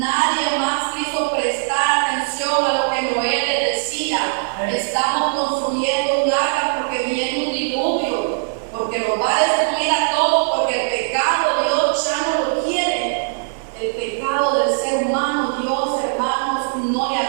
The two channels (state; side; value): silent; left; 63 dB below the other